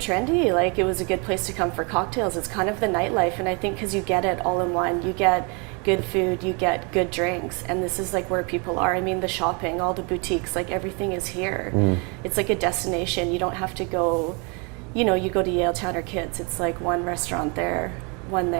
Like, it was a good place to come for cocktails. It's kind of the nightlife, and I think because you get it all in one. You get good food, you get good drinks, and this is like where people are. I mean, the shopping, all the boutiques, like everything is here. It's like a destination. You don't have to go, you know, you go to Yaletown or Kids. It's like one restaurant there, one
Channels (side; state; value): left; quieter; 32.4 dB